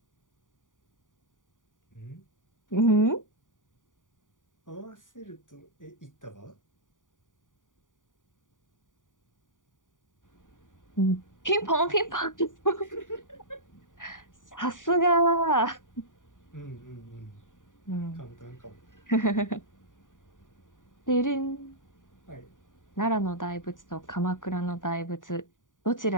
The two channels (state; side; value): late; right; 0.88 ms